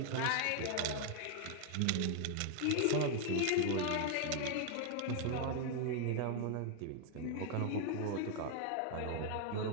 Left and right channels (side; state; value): both; different; correlation 0.00